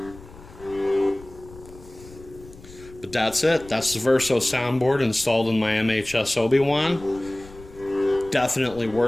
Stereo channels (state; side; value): noise; left; rumble, 20 dB below the sound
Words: But that's it. That's the Verso soundboard installed in my MHS Obi-Wan. Definitely